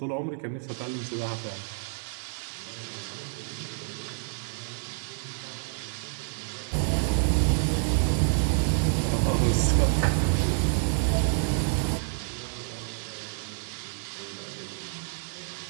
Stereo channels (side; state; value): left; silent; 59 dB below the other